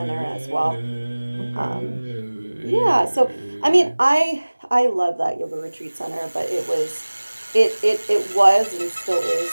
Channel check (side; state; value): both; inverted; correlation -1.00